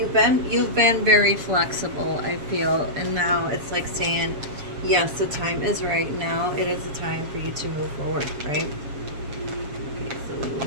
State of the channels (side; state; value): left; late; 7.3 ms